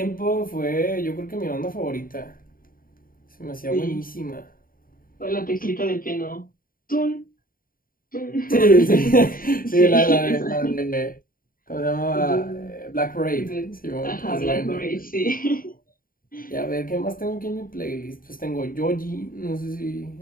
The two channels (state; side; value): late; right; 0.41 ms